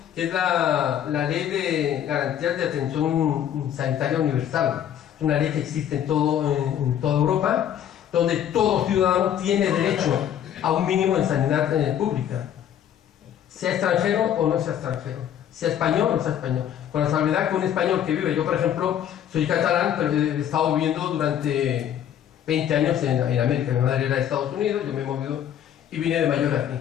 que es la ley de garantías de atención sanitaria universal. Es una ley que existe en toda Europa, donde todo ciudadano tiene derecho a un mínimo de sanidad pública, sea extranjero o no sea extranjero, sea español o no sea español, con la salvedad que un español que vive, yo por ejemplo soy catalán, pero he estado viviendo durante 20 años en América, mi madre era de Estados Unidos, yo me he movido y vine de mayor aquí.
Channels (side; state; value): right; quieter; 10.0 dB